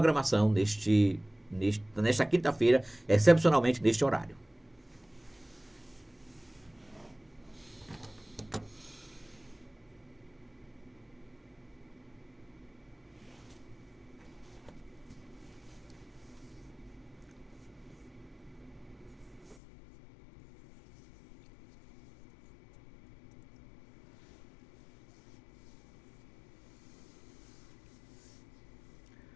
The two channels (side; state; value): right; drops out; at 19.6 s